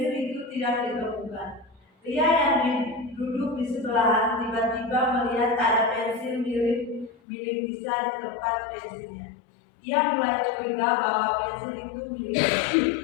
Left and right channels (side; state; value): right; drops out; at 7.1 s